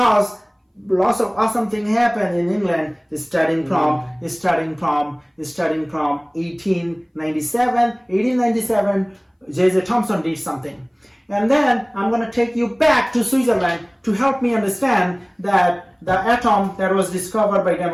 lots of awesome thing happened in England. Starting from 1897, J.J. Thomson did something. And then I'm going to take you back to Switzerland to help me understand that the atom that was discovered by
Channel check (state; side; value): identical; both; correlation 1.00